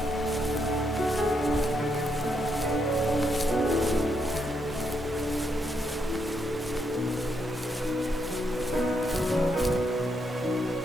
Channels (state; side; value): normal; both; correlation 0.78